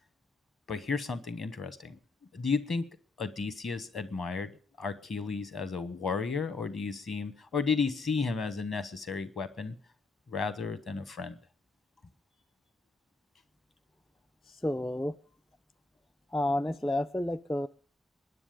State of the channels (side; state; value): right; quieter; 3.4 dB